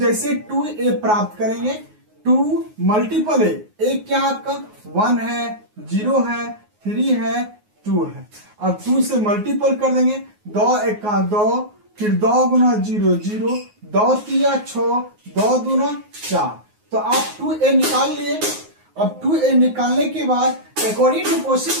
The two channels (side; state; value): left; late; 9.5 ms